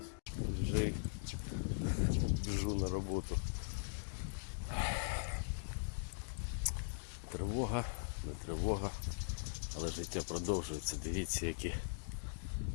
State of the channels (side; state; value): right; silent; digital silence